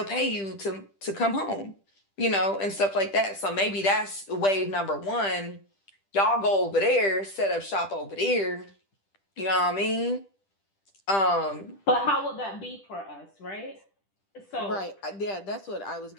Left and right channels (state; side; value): late; right; 10 ms